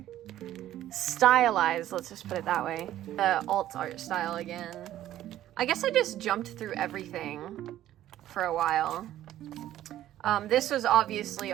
stylized, let's just put it that way. The alt art style again. I guess I just jumped through everything for a while. This was obviously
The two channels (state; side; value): quieter; left; 13.0 dB